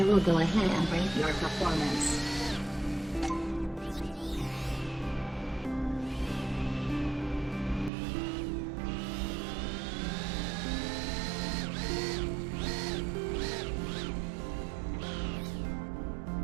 will go ahead and rate your performance.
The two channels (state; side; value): drops out; left; at 7.9 s